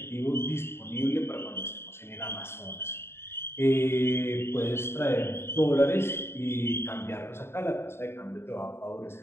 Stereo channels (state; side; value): late; right; 0.12 ms